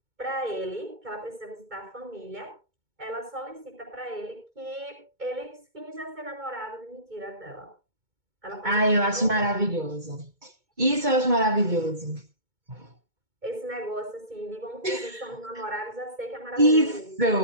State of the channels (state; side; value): late; left; 2.2 ms